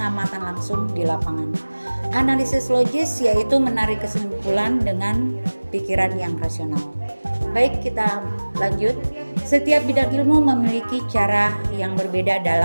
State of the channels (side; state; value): both; inverted; correlation -1.00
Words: langsung di lapangan. Analisis logis yaitu menarik kesimpulan dengan pikiran yang rasional. Baik, kita lanjut. Setiap bidang ilmu memiliki cara yang berbeda